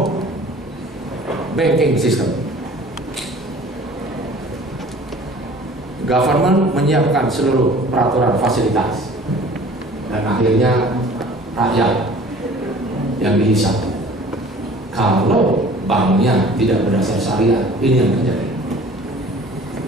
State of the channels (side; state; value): both; normal; correlation 0.48